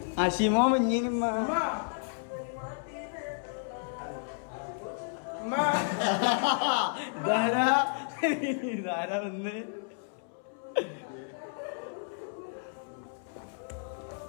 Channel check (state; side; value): silent; right; 57 dB below the other